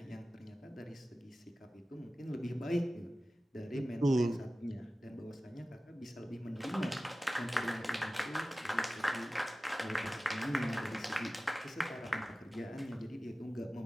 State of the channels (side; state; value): both; normal; correlation 0.96